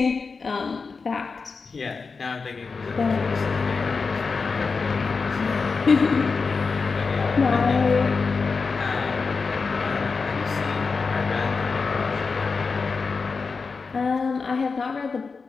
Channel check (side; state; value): right; quieter; 4.7 dB